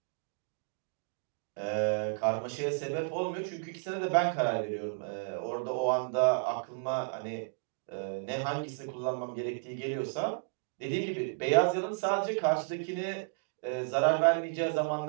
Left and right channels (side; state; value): left; silent; digital silence